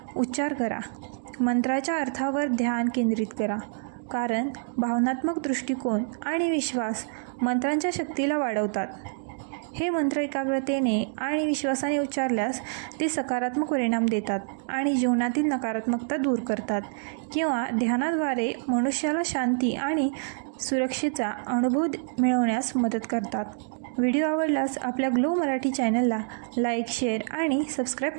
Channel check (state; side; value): silent; left; digital silence